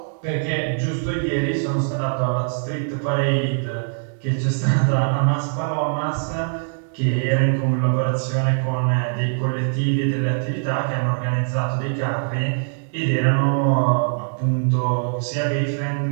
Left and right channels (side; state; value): left; silent; 64 dB below the other